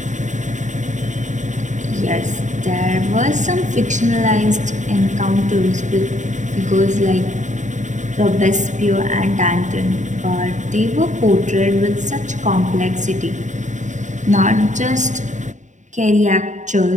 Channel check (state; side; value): late; left; 0.35 ms